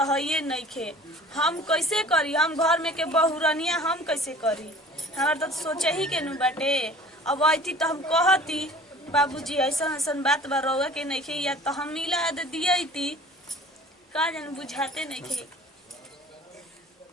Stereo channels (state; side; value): normal; both; correlation 0.46